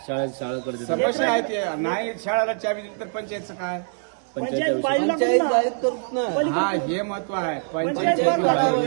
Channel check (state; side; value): silent; left; 63 dB below the other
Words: शाळेकडे समस्या आहे ते. नाही शाळेला चाबी दिली तर पंचायतचं काय? पंचायत पंचायत जाहीर करत ना. हा, हे महत्व आहे. पंचायत